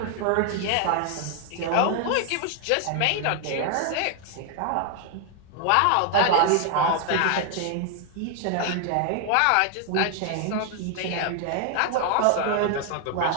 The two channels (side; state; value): both; different; correlation 0.00